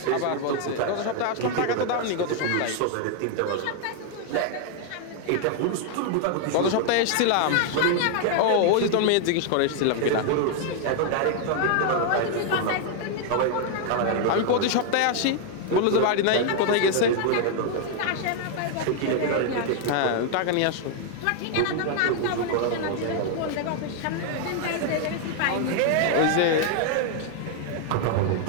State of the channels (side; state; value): both; different; correlation 0.00